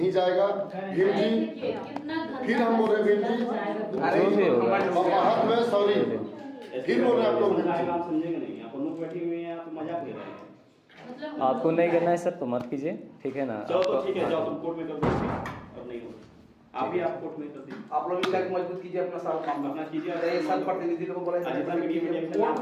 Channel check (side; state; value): both; identical; correlation 1.00